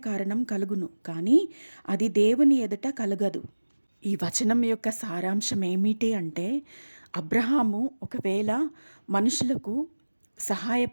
కారణం కలుగును, కానీ అది దేవుని ఎదుట కలుగదు. ఈ వచనం యొక్క సారాంశం ఏమిటి అంటే, అబ్రహాము ఒకవేళ మనుషులకు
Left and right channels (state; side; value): inverted; both; correlation -1.00